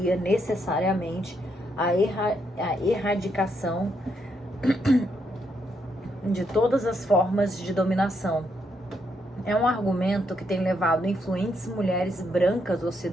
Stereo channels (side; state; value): both; normal; correlation 0.77